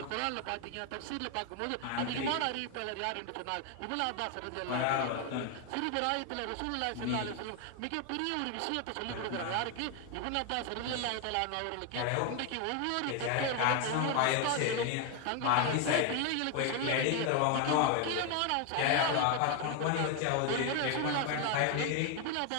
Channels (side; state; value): both; different; correlation 0.01